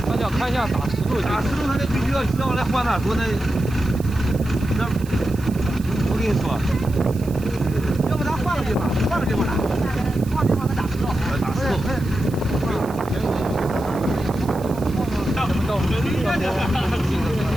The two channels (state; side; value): noise; right; hiss, 20 dB below the sound